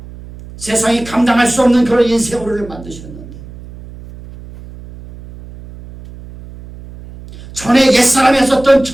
세상이 감당할 수 없는 그런 인생으로 우리를 만드셨는데 전에 옛사람이 했었던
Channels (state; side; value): noise; right; hum, 17 dB below the sound